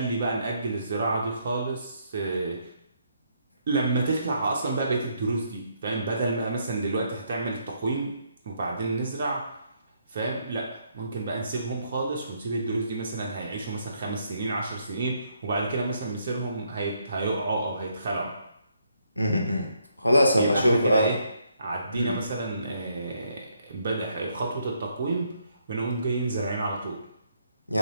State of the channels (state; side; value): inverted; both; correlation -0.73